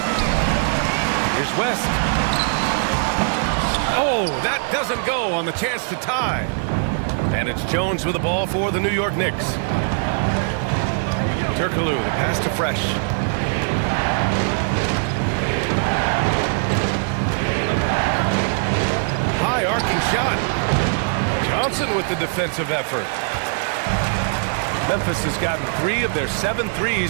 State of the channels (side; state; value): left; silent; 65 dB below the other